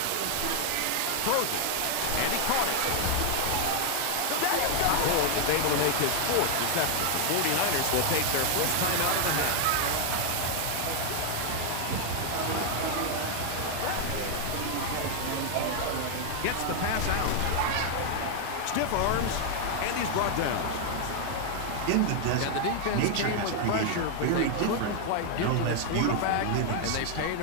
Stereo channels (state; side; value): different; both; correlation 0.00